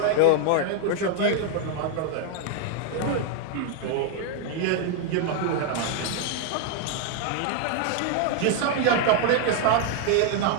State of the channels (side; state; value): both; different; correlation 0.01